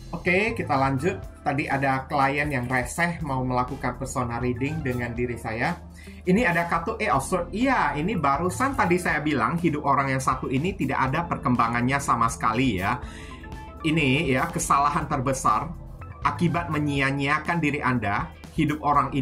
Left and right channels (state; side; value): identical; both; correlation 1.00